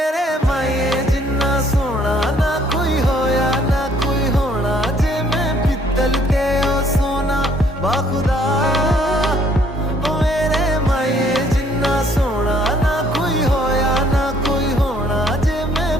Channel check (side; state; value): both; normal; correlation 0.63